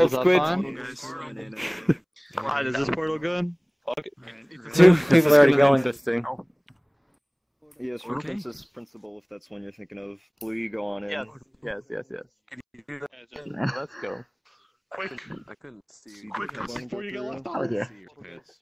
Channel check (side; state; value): both; identical; correlation 1.00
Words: Squid? Alright, is this portal good? Fuck it. 2 people are already going. Interesting. Yes, for Princess Principal, if that's one you're thinking of. Will you go on in? Yes. Let's go. Quick. I couldn't see. Quick, before you get left Oh, out. yeah.